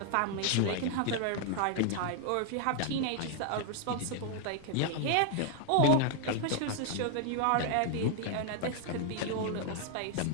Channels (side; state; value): both; different; correlation 0.00